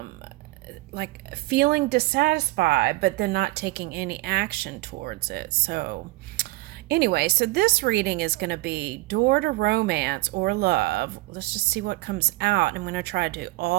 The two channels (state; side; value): quieter; left; 20.8 dB